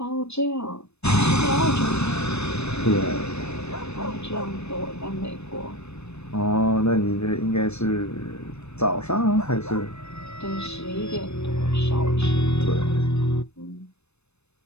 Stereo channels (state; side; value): late; right; 0.81 ms